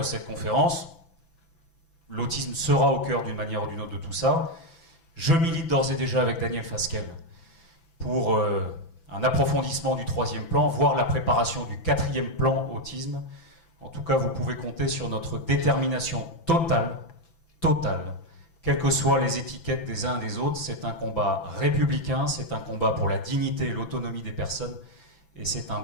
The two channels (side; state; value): right; late; 6.0 ms